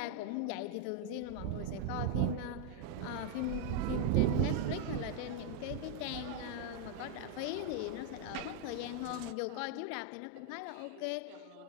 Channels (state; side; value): different; both; correlation 0.00